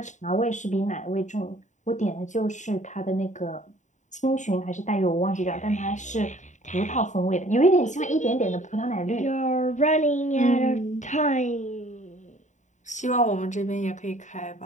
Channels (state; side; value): late; right; 0.35 ms